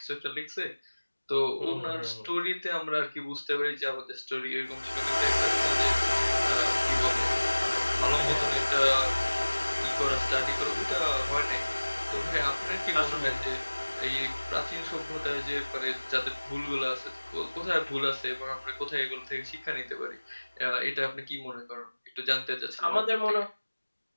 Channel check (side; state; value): both; inverted; correlation -1.00